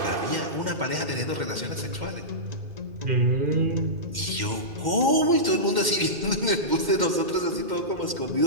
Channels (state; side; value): late; left; 2.1 ms